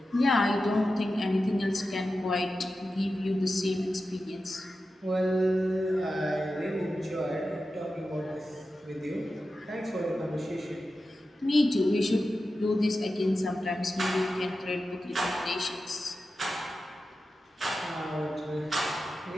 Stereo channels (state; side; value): normal; both; correlation 0.92